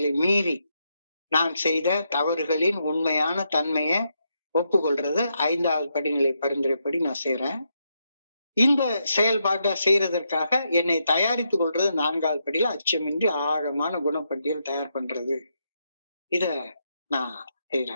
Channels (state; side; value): inverted; both; correlation -0.81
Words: மீறி நான் செய்த தவறுகளின் உண்மையான தன்மையை ஒப்புக்கொள்றது 5வது படிநிலை பரிந்துரைப்படி நான் செய்யறேன். இந்த செயல்பாட்டை செய்யறதற்காக என்னை தயாரித்துக் கொள்றது 4வது படியில அச்சமின்றி ஆழமான குணப்பட்டியல் தயார் பண்றது. இத நான்